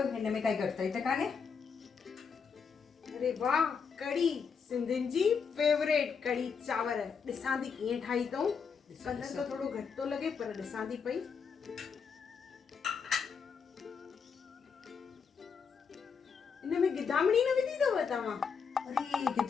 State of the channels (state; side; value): quieter; right; 6.0 dB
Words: हिन में काई घटिताई त कान्हे? अरे वाह, कढ़ी सिंधियुनि जी फेवरेट कढ़ी चांवर। ॾिसां थी कीअं ठाही अथऊं। कलर तो थोड़ो घटि थो लॻे पर ॾिसां थी पई। इन में गिदामड़ी न विधी अथव तव्हां? अरे